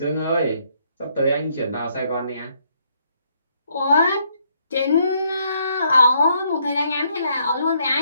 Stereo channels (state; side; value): inverted; both; correlation -0.71